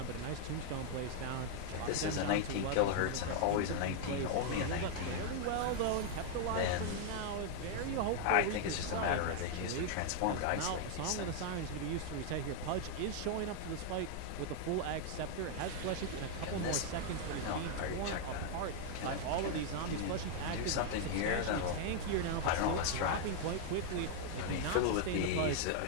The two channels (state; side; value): different; both; correlation 0.00